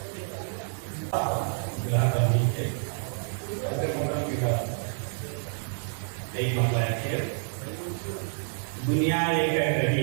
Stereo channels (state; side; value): silent; left; 58 dB below the other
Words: दुनिया ये कह रही